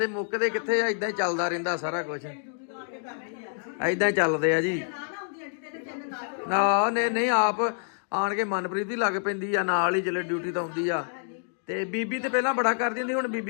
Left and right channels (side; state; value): right; silent; digital silence